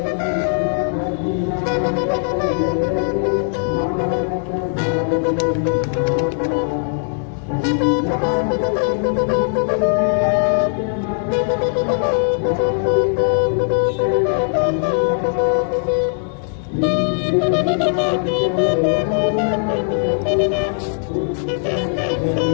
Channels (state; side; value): silent; right; 66 dB below the other